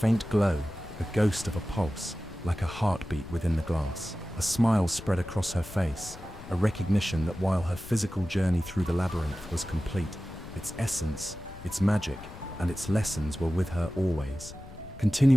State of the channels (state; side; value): noise; left; rumble, 15 dB below the sound